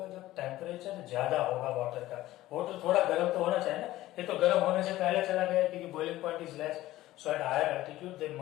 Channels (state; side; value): quieter; right; 15.8 dB